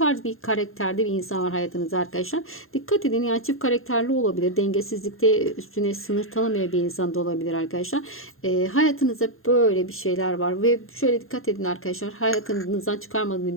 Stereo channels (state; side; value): late; right; 0.61 ms